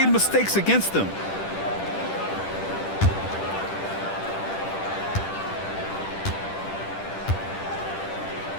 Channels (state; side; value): late; right; 10 ms